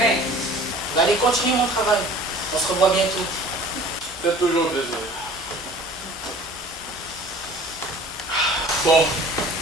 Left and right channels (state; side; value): normal; both; correlation 0.46